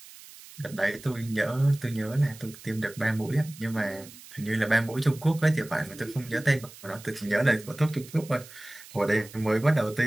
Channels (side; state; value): right; noise; hiss, 19 dB below the sound